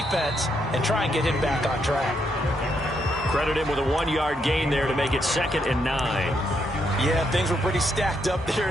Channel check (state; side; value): normal; both; correlation 0.77